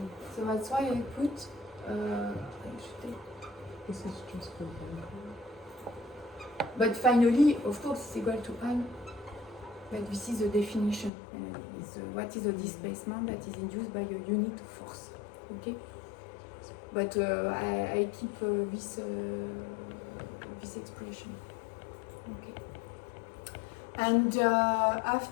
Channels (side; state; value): right; drops out; at 11.1 s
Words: So that's why I put This is just for but finally, of course, it's equal to I. But this is the definition. What is the displacement that is induced by a unit of force? Okay. But I keep this expression. Okay. And